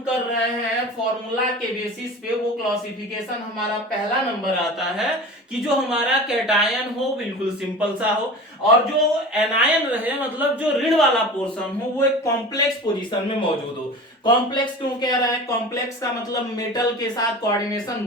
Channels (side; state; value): both; normal; correlation 0.35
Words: कर रहे हैं फॉर्मूला के बेसिस पे, वो क्लासिफिकेशन हमारा पहला नंबर आता है कि जो हमारा कैटायन हो बिल्कुल सिंपल सा हो और जो एनायन रहे मतलब जो ऋण वाला पोर्शन हो वो एक कॉम्प्लेक्स पोजीशन में मौजूद हो। कॉम्प्लेक्स क्यों कह रहा है, कॉम्प्लेक्स का मतलब मेटल के साथ कोऑर्डिनेशन